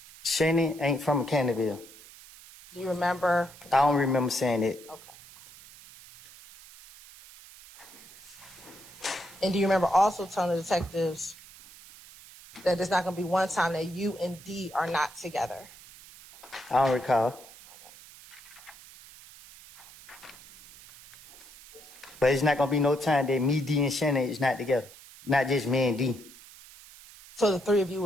Shannon ain't from Canterville. Do you remember? I don't remember saying it. Okay. And do you remember also telling the detectives that there's not going to be one time that you and Dee are not together? I don't recall. But it's not gonna be no time that me, Dee, and Shannon is not together. Not just me and Dee. So the three of you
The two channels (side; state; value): right; noise; hiss, 20 dB below the sound